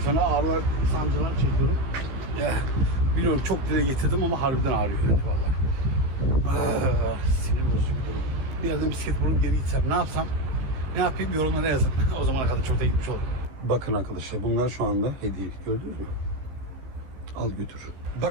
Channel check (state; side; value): late; left; 15 ms